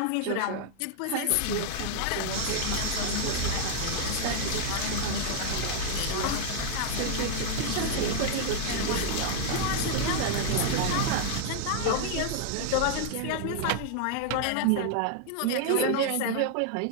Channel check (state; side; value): different; both; correlation 0.00